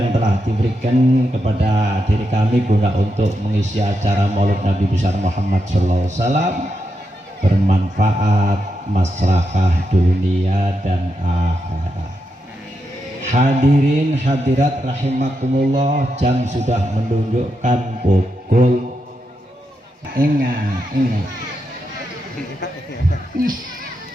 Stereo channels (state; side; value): normal; both; correlation 0.85